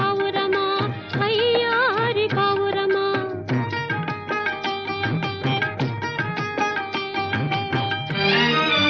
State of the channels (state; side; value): identical; both; correlation 1.00